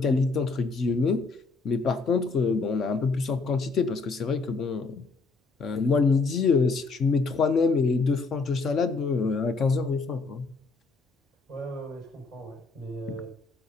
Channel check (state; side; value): quieter; right; 4.0 dB